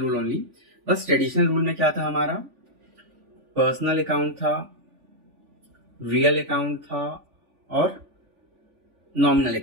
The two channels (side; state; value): left; late; 3.5 ms